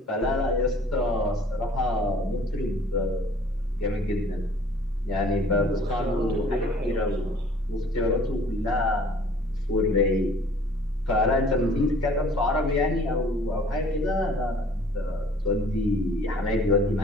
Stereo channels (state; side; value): normal; both; correlation 0.53